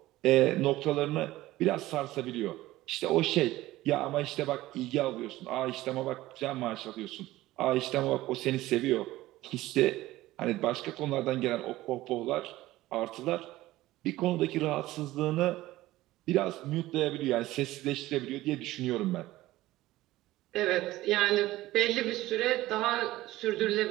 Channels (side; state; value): left; quieter; 16.8 dB